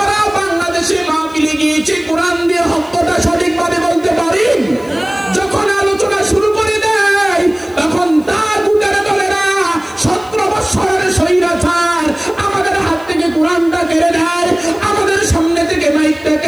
বাংলাদেশে মাহফিলে গিয়েছি, কোরআন দিয়ে হকটা সঠিকভাবে বলতে পারি। যখন আলোচনা শুরু করে দেয় তখন তার বুকের দলেরা 17 বছরের স্বৈরাচার আমাদের হাত থেকে কোরআনটা কেড়ে নেয়, আমাদের সামনে থেকে মাইকটা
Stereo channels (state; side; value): noise; left; hiss, 27 dB below the sound